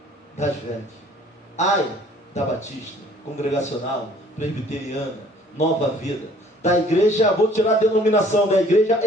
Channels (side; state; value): both; normal; correlation 0.56